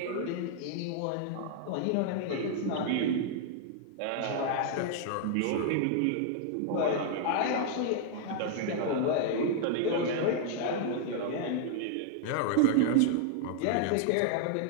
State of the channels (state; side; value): different; both; correlation 0.00